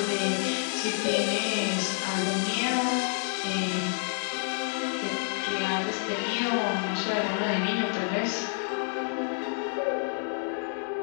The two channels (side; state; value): right; silent; 59 dB below the other